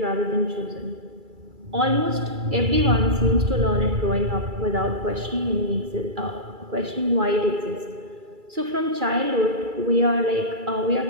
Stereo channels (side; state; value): left; late; 2.3 ms